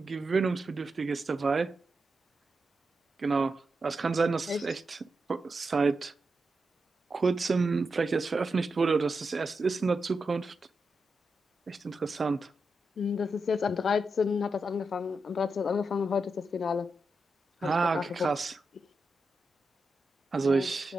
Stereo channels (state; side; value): normal; both; correlation 0.87